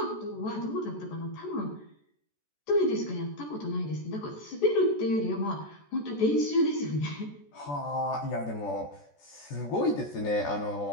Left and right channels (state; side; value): late; right; 14 ms